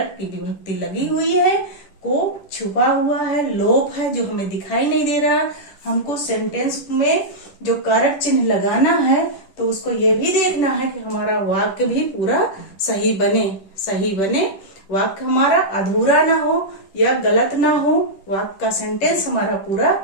की विभक्ति लगी हुई है, को छुपा हुआ है, लोप है जो हमें दिखाई नहीं दे रहा। हमको सेंटेंस में जो कारक चिन्ह लगाना है तो उसको ये भी देखना है कि हमारा वाक्य भी पूरा सही बने, वाक्य हमारा अधूरा ना हो या गलत ना हो, वाक्य का सेंटेंस हमारा पूरा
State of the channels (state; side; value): late; right; 10 ms